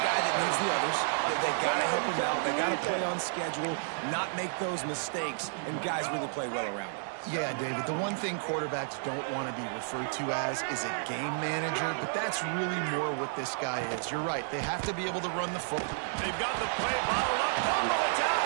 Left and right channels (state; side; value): silent; left; digital silence